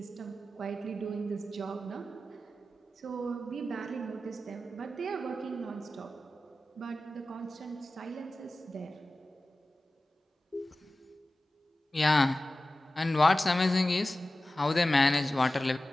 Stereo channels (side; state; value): both; normal; correlation 0.95